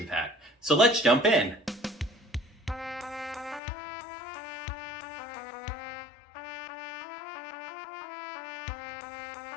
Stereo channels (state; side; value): drops out; right; at 3.6 s